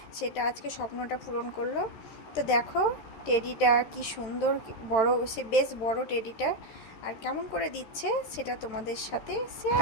সেটা আজকে স্বপ্নটা পূরণ করলো। তো দেখো টেডিটা কি সুন্দর বড়, সে বেশ বড় টেডিটা। আর কেমন করে দিচ্ছে সেটা তোমাদের সাথে শেয়ার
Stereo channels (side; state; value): right; late; 13 ms